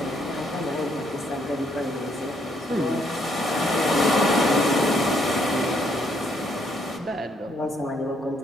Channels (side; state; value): both; normal; correlation 0.71